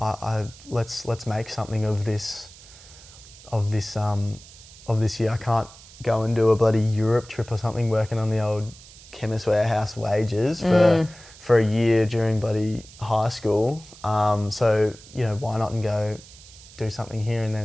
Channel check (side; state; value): right; noise; hiss, 20 dB below the sound